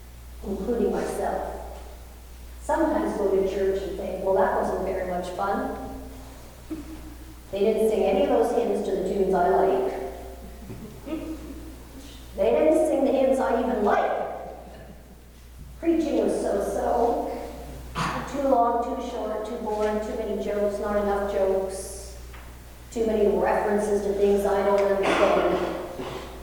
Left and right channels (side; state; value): both; identical; correlation 1.00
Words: including myself, sometimes go to church and think, well, that much fun. They didn't sing any of those hymns to the tunes I like. They didn't sing the hymns I even like. Preaching was so-so. Too long, too short, too boring, too many jokes, not enough jokes, too many references to things I don't understand.